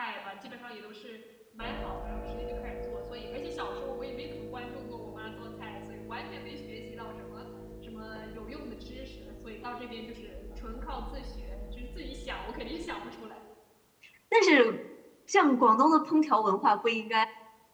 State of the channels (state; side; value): identical; both; correlation 1.00